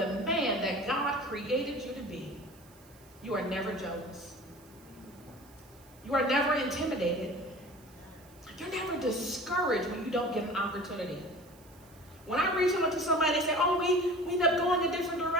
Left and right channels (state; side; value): noise; right; hiss, 26 dB below the sound